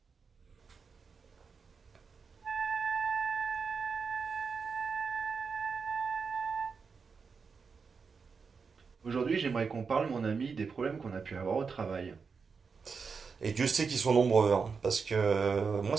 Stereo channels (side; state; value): left; quieter; 5.4 dB